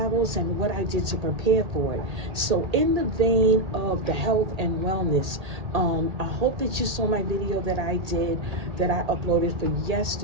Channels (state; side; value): late; left; 1.8 ms